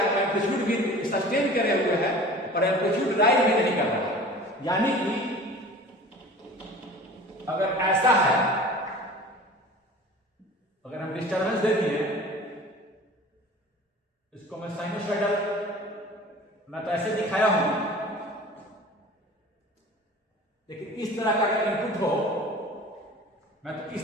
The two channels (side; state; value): both; normal; correlation 0.41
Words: एम्पलीट्यूड भी सस्टेन करे हुए है और एम्पलीट्यूड राइज भी नहीं कर रहा है। यानी कि अगर ऐसा है, अगर हम डिस्टर्बेंस दे दिए, इसको मैं साइनोसॉइडल, मैं तो ऐसे दिखाया हूं, लेकिन इस तरह का अगर इनपुट हो, मैं तो